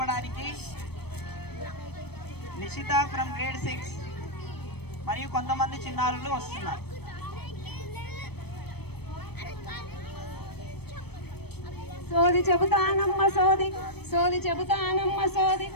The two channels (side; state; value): right; late; 0.97 ms